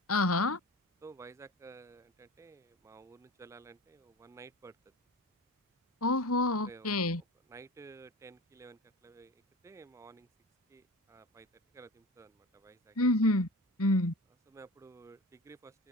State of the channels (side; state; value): both; normal; correlation 0.34